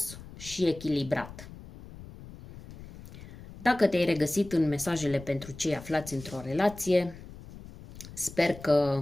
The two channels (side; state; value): left; noise; rumble, 16 dB below the sound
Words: și echilibrat. Dacă te-ai regăsit în mesajele pentru cei aflați într-o relație, sper